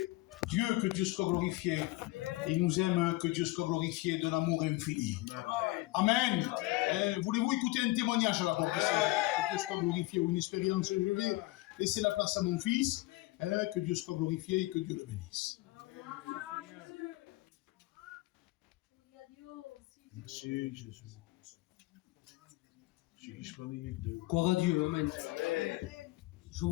Dieu, que Dieu soit glorifié. Il nous aime, que Dieu soit glorifié d'un amour infini. Amen. Voulez-vous écouter un témoignage à la porte ici? Que Dieu soit glorifié, ou une expérience? Je vais laisser la place à mon fils. Que Dieu soit glorifié et que Dieu le bénisse. Merci Jésus. Gloire à Dieu, amen. Je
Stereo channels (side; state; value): right; quieter; 20.2 dB